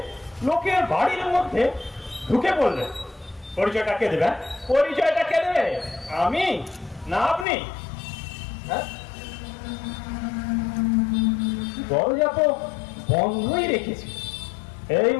লোকের বাড়ির মধ্যে ঢুকে পড়লেন। পরিচয়টা কে দেবে? পরিচয়টা কে দেবে? আমি না আপনি? হ্যাঁ, দরজা তো বন্ধই রেখেছি। এই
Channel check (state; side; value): drops out; right; at 7.5 s